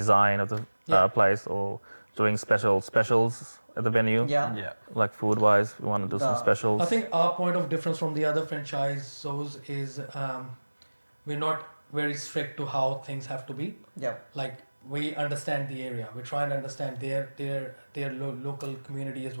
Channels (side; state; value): both; inverted; correlation -1.00